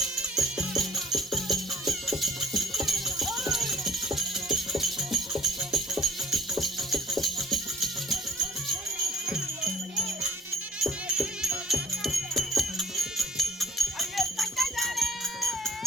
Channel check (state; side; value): normal; both; correlation 0.53